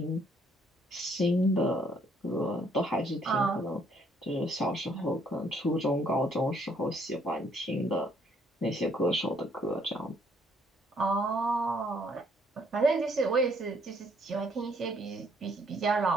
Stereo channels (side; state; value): both; normal; correlation 0.66